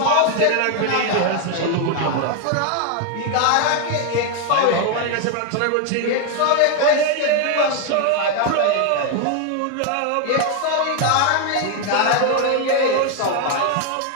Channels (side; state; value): both; different; correlation 0.01